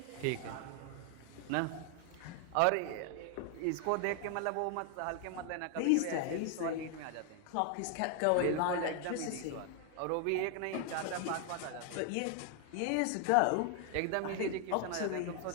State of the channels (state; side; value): different; both; correlation 0.00